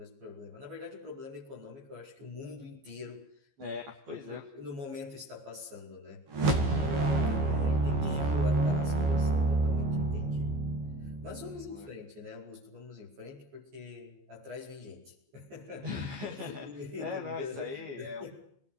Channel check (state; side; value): late; left; 15 ms